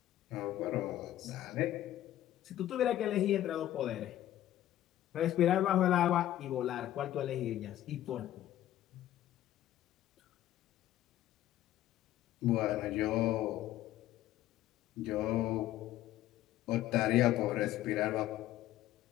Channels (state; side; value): quieter; right; 13.3 dB